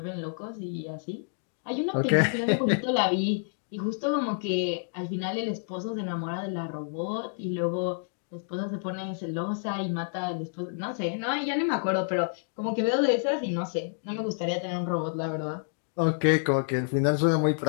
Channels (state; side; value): silent; right; digital silence